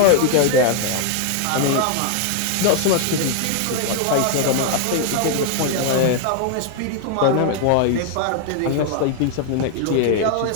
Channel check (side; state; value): both; different; correlation 0.00